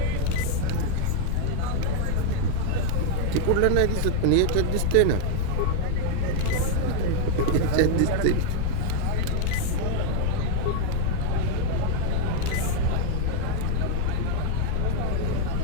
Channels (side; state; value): both; different; correlation 0.01